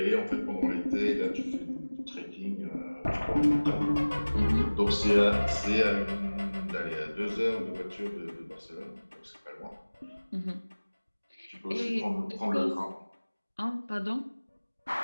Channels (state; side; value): inverted; both; correlation -1.00